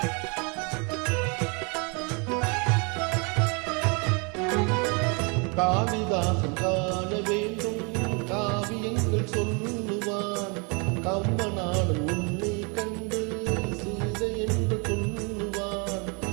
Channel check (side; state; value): left; quieter; 32.5 dB